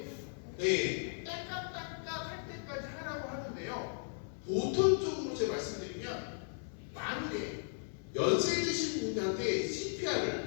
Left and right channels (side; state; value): right; silent; 53 dB below the other